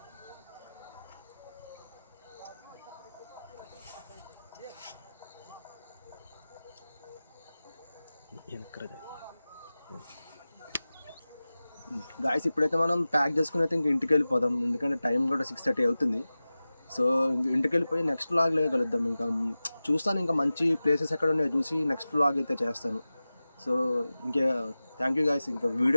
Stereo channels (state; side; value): inverted; both; correlation -0.97